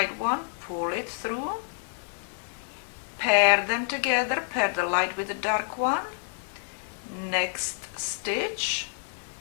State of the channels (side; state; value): right; silent; digital silence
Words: one, pull it through, pair them together, pair the light with the dark one, next stitch,